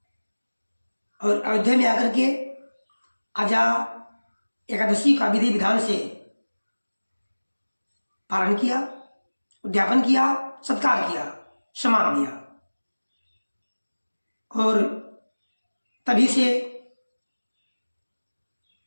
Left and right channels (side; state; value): both; inverted; correlation -1.00